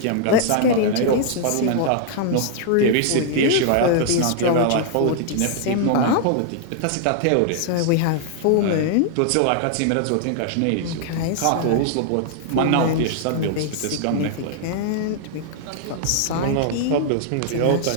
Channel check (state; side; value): different; both; correlation -0.01